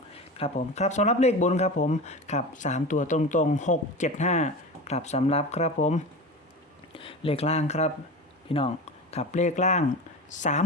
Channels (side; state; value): both; normal; correlation 0.29